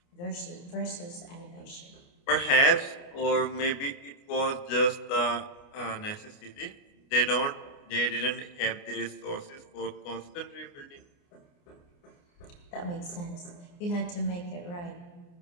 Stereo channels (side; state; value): right; late; 29 ms